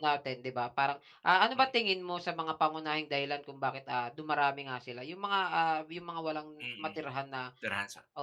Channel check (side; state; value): both; identical; correlation 1.00